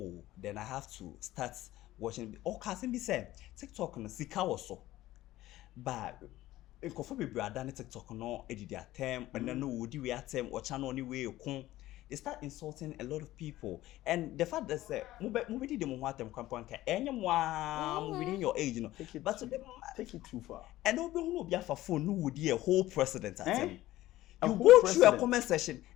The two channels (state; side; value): quieter; right; 15.8 dB